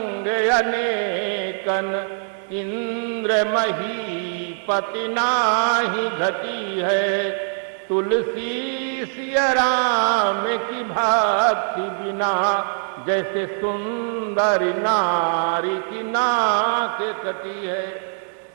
अनेकन, इंद्र महीपति नाही घटी है। तुलसी सिया राम की भक्ति बिना, जैसे सुंदर नारी की नाक कटी है।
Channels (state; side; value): silent; left; 61 dB below the other